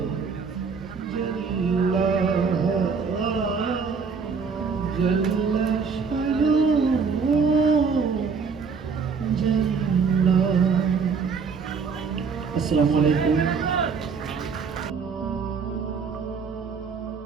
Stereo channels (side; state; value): left; quieter; 5.5 dB